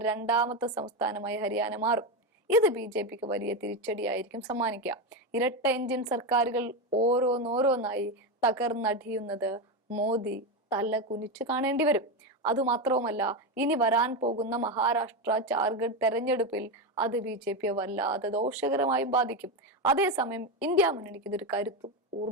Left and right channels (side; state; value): both; normal; correlation 0.13